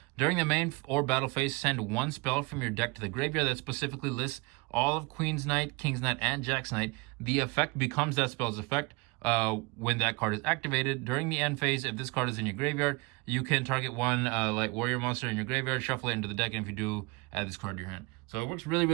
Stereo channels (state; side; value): quieter; left; 27.2 dB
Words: During the main or battle phase, send 1 spell from your deck to the graveyard that specifically lists all of Queen's Knight, King's Knight, and Jack's Knight. The effect becomes that spell's effect when that card is activated. During the end phase, if this card is in your graveyard, you can target 1 light warrior monster in your graveyard, shuffle it into the deck, and if you do, add this card to your hand. So it works